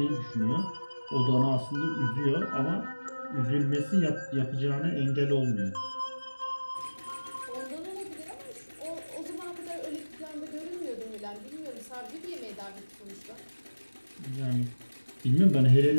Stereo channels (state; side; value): inverted; both; correlation -1.00